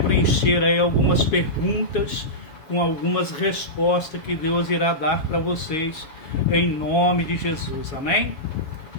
preencher aí algumas perguntas com algumas respostas que Deus irá dar para vocês em nome de Jesus, amém?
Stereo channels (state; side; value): late; right; 7.1 ms